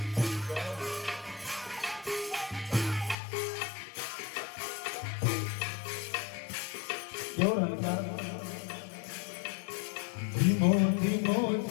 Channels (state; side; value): drops out; right; at 3.2 s